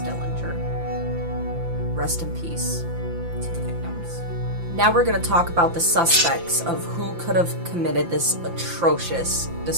Rest in peace to the victims. Now we're going to talk about the suspects of who could have committed this atrocious,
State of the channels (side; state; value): left; late; 5.8 ms